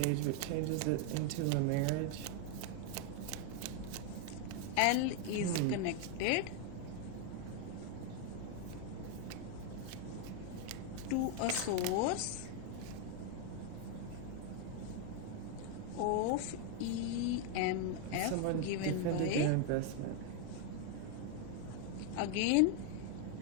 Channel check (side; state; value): both; different; correlation 0.01